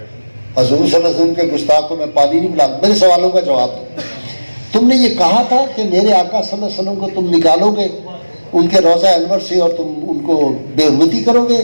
حضور صلی اللہ علیہ وسلم کے گستاخ کو میں پانی نہیں پلاؤں، میرے سوالوں کا جواب دو۔ تم نے یہ کہا تھا کہ میرے آقا صلی اللہ علیہ وسلم کو تم نکالو گے ان کے روضہ انور سے اور تم ان کو بے حرمتی کرو گے،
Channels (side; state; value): both; inverted; correlation -1.00